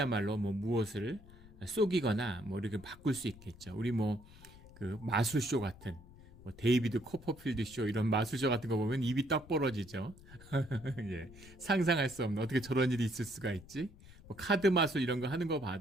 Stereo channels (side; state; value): left; noise; rumble, 20 dB below the sound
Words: 무엇을 속이거나 이렇게 바꿀 수 있겠죠. 우리 그 마술쇼 같은 데이비드 코퍼필드 쇼 이런 마술쇼 같은 거 보면 입이 떡 벌어지죠. 상상할 수 없는, 어떻게 저런 일이 있을 수가 있지? 카드 마술 이런 거 하는 거